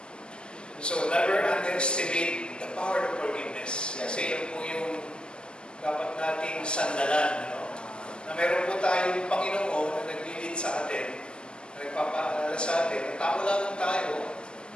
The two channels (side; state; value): right; late; 0.054 ms